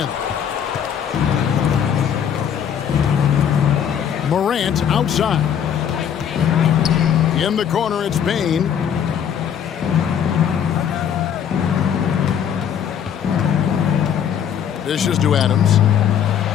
Morant outside. In the corner, it's Bane. Dishes to Adams.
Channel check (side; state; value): right; quieter; 8.6 dB